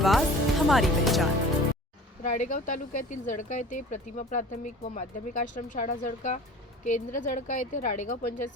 हमारी पहचान। राळेगाव तालुक्यातील जळका येथे प्रतिमा प्राथमिक व माध्यमिक आश्रमशाळा जळका केंद्र जळका येथे राळेगाव पंचायत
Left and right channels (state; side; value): normal; both; correlation 0.42